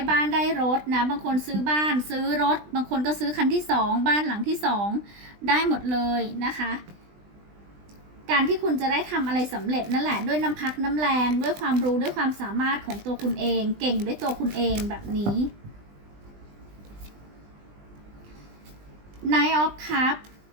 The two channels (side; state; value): left; late; 20 ms